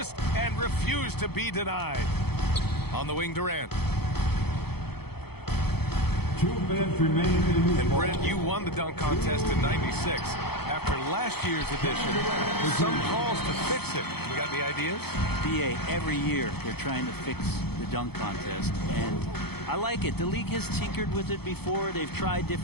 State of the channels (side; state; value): right; late; 0.97 ms